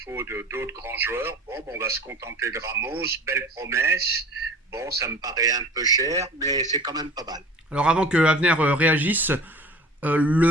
d'autres grands joueurs, on va se contenter de Ramos, belle promesse. Bon, ça me paraît un peu cher, mais c'est quand même pas mal. Alors avant que Avner réagisse,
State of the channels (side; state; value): both; normal; correlation 0.42